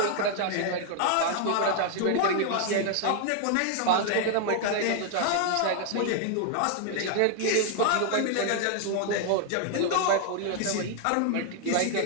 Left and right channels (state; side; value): different; both; correlation 0.00